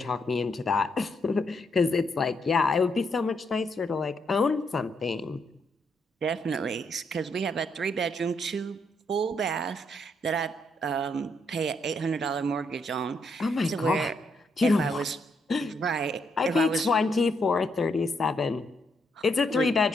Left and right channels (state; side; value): normal; both; correlation 0.76